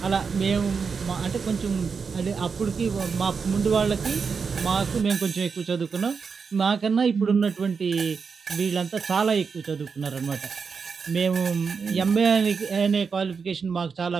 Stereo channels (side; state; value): left; quieter; 5.5 dB